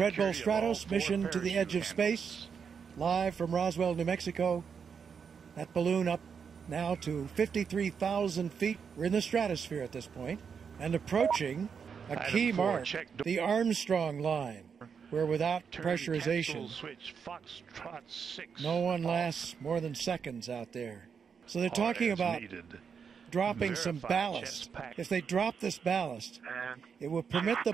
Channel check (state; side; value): quieter; left; 6.5 dB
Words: Bull security of all Stratos, 4 Mission to the Edge of parachute Space, live from Roswell, New Mexico. That balloon up now to 53,000 feet. We're in the stratosphere at this point and approaching a Item key 4, mark, check the Armstrong line, where without Turn pressurization, capsule switch Foxtrot 6. no one lasts more than seconds out there. So they're talking as about needed. dropping some Verify ballast. chest pack. If they drop this ballast, And it will permit the